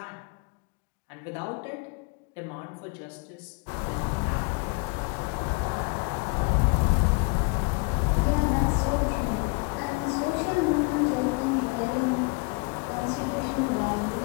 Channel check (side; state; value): right; quieter; 30.6 dB